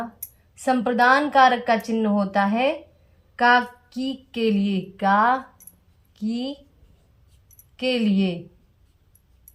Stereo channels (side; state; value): both; identical; correlation 1.00